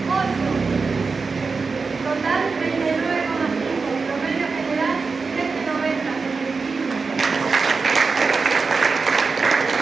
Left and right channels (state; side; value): quieter; left; 4.6 dB